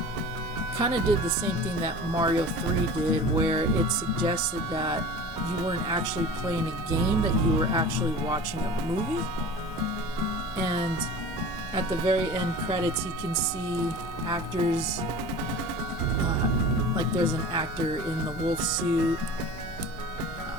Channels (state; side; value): noise; left; rumble, 25 dB below the sound